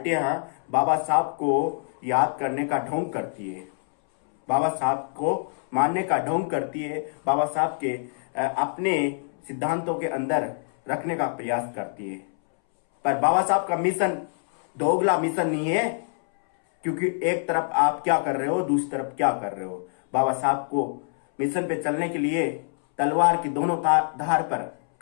बाबा साहब को याद करने का ढोंग करती है, बाबा साहब को मानने का ढोंग करती है, बाबा साहब के अपने सिद्धांतों के अंदर रखने का प्रयास करती है। पर बाबा साहब का मिशन दोगला मिशन नहीं है, क्योंकि एक तरफ आप क्या कर रहे हो, दूसरी तरफ क्या कर रहे हो। बाबा साहब को मिशन पे चलने के लिए तलवार की दोनों धार पर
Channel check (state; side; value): silent; right; 62 dB below the other